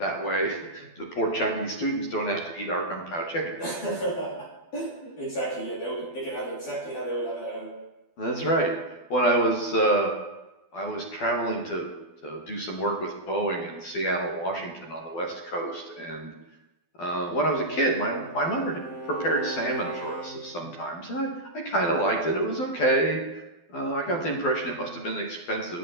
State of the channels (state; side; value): late; right; 12 ms